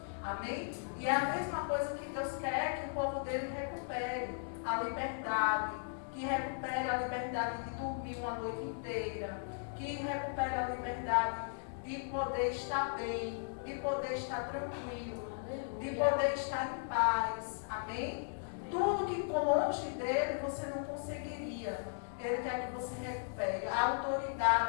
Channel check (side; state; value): right; silent; digital silence